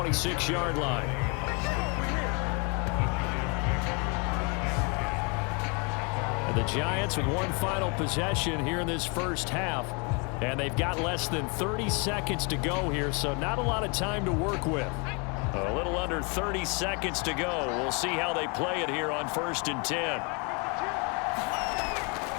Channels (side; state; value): right; quieter; 32.9 dB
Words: line. And the Giants with one final possession here in this first half. And they've got less than 30 seconds to go here, so not a lot of time to work with. A little under 30 seconds to go. We'll see how they play it here on 1st and 10.